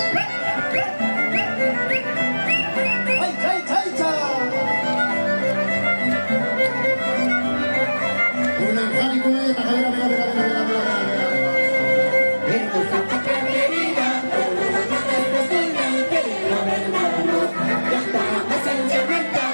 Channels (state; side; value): inverted; both; correlation -1.00